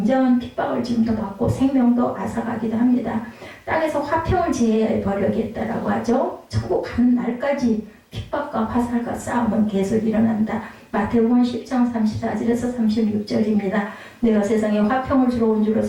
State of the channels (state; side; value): identical; both; correlation 1.00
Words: 핍박을 지금도 받고 생명도 앗아가기도 합니다. 땅에서 화평을 제해야 버려야겠다라고 하죠. 천국 가는 날까지 핍박과 화살과 싸움은 계속 일어난다. 마태복음 10장 34절에서 36절입니다. 내가 세상에 화평을 주러 온 줄로